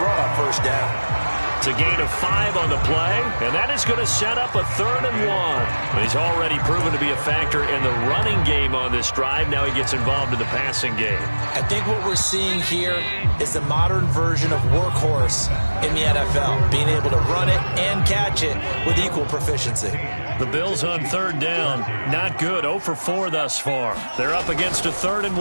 run on first down. It's a gain of 5 on the play, and that is going to set up a 3rd and 1. He's already proven to be a factor in the running game on this drive. Now he gets involved in the passing game. I think what we're seeing here is the modern version of workhorse in the NFL, being able to run it and catch it with equal proficiency. The Bills on third down, not good, 0 for 4 thus far. They're up against a 3rd and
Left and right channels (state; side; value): inverted; both; correlation -1.00